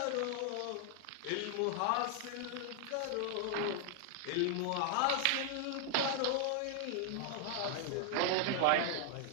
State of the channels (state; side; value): different; both; correlation 0.00